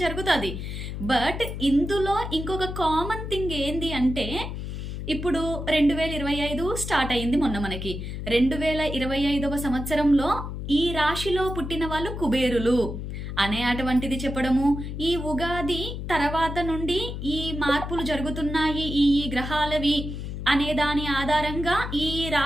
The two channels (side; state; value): left; noise; hum, 6 dB below the sound